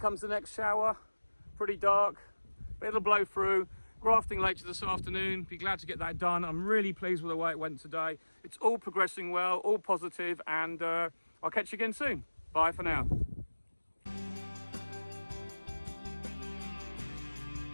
the next shower. Pretty dark, but it'll blow through. Grafting later this afternoon, be glad to get that done. I'm really pleased with the way it went today. It's all progressing well, all positive, and I'll catch you again soon. Bye for now.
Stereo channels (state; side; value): inverted; both; correlation -1.00